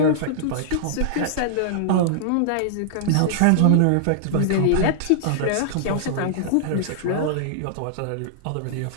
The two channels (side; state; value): both; different; correlation -0.01